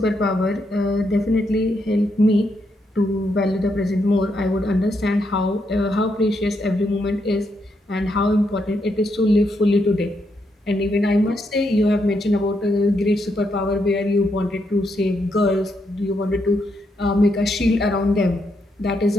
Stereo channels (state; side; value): normal; both; correlation 0.79